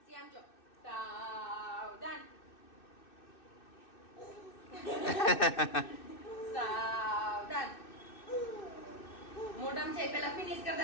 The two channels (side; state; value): right; late; 2.6 ms